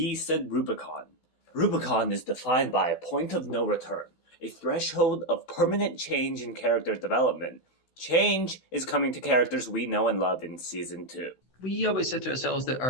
said Rubicon. Rubicon is defined by a point of no return, a threshold of permanent change in character development. Change is coming to characters we know and love in Season 2. We always said to ourselves that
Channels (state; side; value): late; right; 16 ms